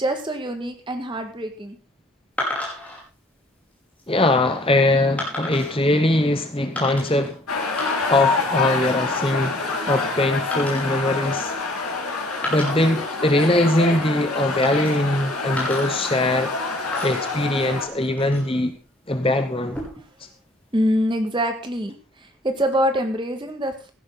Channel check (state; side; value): normal; both; correlation 0.58